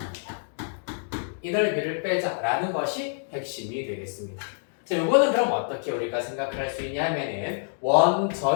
이 넓이를 빼자라는 것이 핵심이 되겠습니다. 자, 요거는 그럼 어떻게 우리가 생각을 할 수 있냐 하면은 원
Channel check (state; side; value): silent; right; digital silence